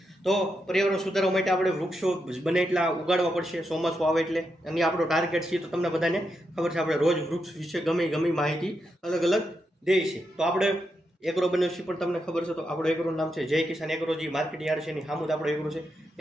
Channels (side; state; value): both; normal; correlation 0.84